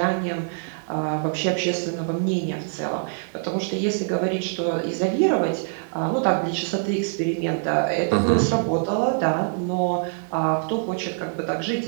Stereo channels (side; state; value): left; silent; 62 dB below the other